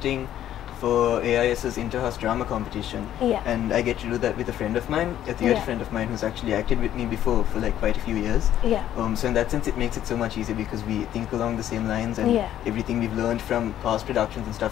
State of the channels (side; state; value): right; quieter; 11.6 dB